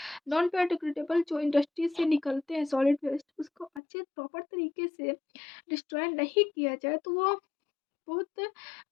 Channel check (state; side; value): drops out; right; at 3.8 s